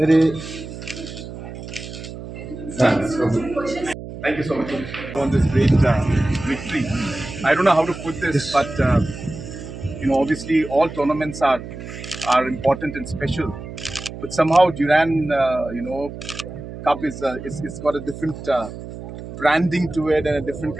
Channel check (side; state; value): right; noise; hum, 11 dB below the sound